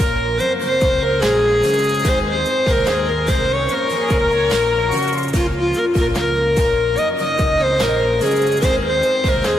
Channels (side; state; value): both; normal; correlation 0.84